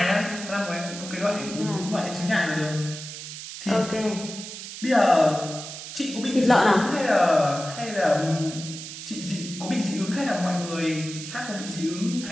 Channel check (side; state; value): right; noise; hiss, 10 dB below the sound